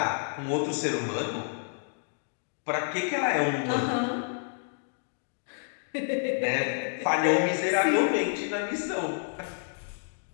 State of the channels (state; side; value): silent; right; digital silence